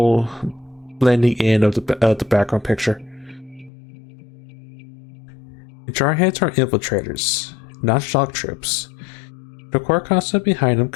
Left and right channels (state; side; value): drops out; right; at 3.7 s